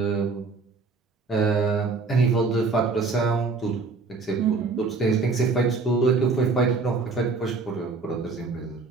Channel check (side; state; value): left; quieter; 4.2 dB